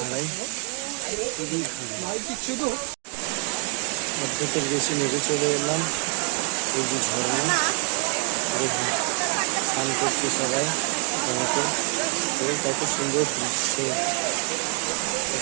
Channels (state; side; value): quieter; left; 36.9 dB